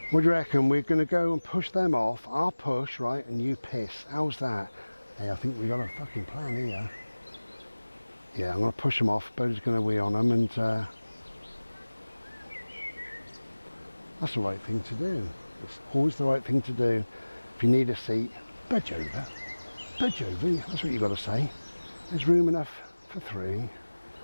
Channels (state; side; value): inverted; both; correlation -1.00